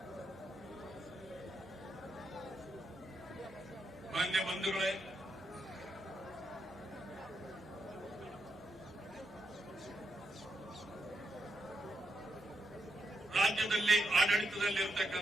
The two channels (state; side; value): normal; both; correlation 0.83